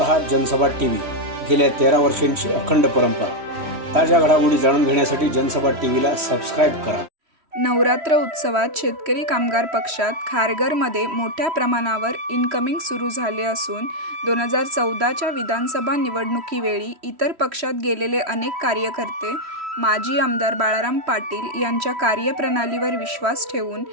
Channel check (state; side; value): late; left; 3.1 ms